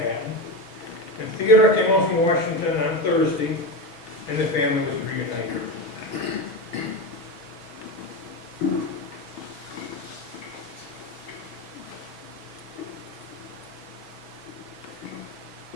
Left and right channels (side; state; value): right; late; 6.1 ms